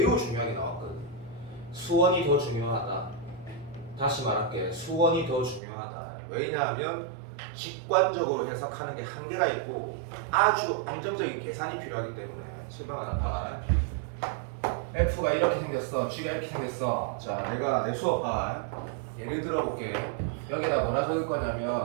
중요하게 나왔거든. 수원이 더 중요하다. 다시 말할게. 수원이 더 중요하다. 왜냐하면 직관적으로 해석하는 게 한계가 있고 아주 안정적인 계산이 필요하기 때문에 실망하는 말. F가 이렇게 생겼어. G가 이렇게 생겼어. 자, 내가 내 수업 봐. 예를 들어볼게. 여기다 뭐라 적을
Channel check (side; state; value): left; drops out; at 5.6 s